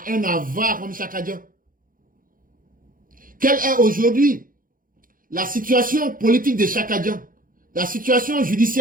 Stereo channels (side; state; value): left; late; 0.40 ms